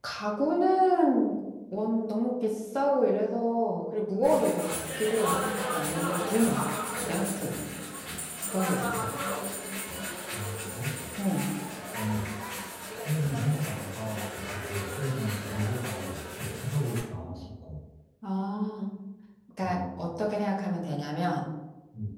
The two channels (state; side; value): identical; both; correlation 1.00